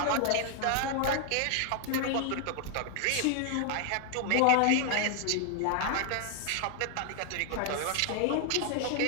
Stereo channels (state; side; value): different; both; correlation 0.00